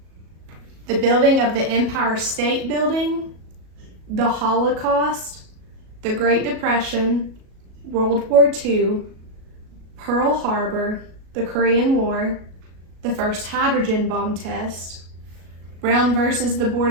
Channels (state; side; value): late; left; 37 ms